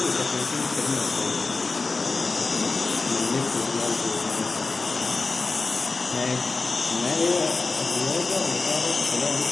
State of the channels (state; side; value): quieter; right; 3.8 dB